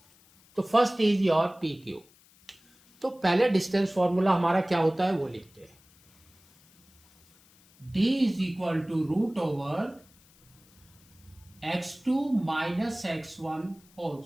तो first is your P Q. तो पहले डिस्टेंस फॉर्मूला हमारा क्या होता है वो लिखते हैं। D इज इक्वल टू √ओवर x2 - x1 whole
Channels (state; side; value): noise; left; hiss, 29 dB below the sound